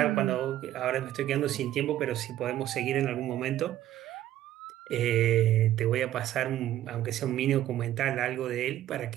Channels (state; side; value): quieter; left; 13.0 dB